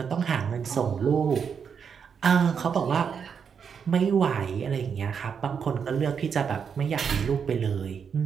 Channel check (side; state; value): left; quieter; 6.8 dB